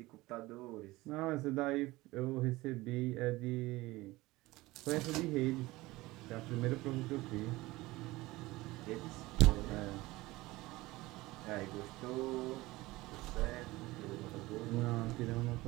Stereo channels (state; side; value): quieter; left; 19.8 dB